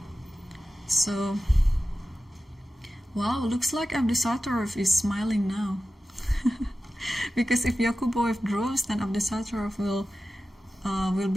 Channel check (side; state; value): both; normal; correlation 0.94